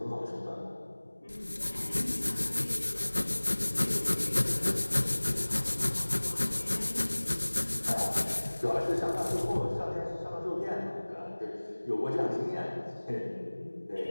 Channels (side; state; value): both; inverted; correlation -1.00